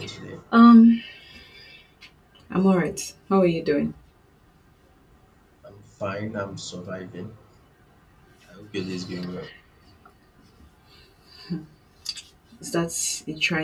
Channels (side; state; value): both; identical; correlation 1.00